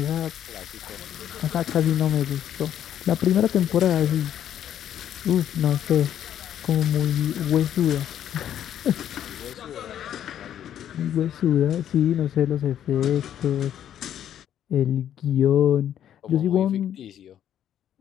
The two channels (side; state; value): right; quieter; 10.4 dB